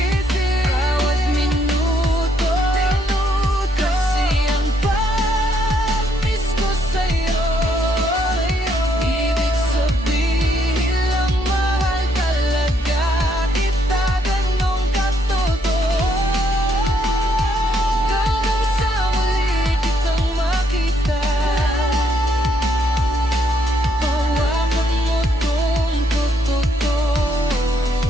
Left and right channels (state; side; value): normal; both; correlation 0.72